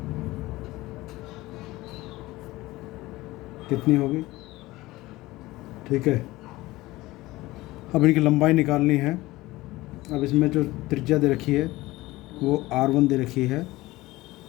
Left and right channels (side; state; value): right; quieter; 18.9 dB